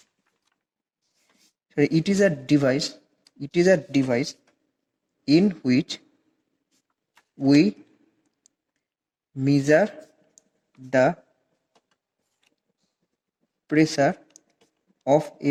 sorry, it is a device in which we measure the pressure of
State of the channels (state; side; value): identical; both; correlation 1.00